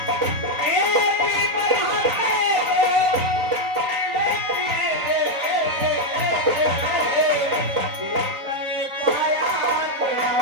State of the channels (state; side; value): late; left; 3.9 ms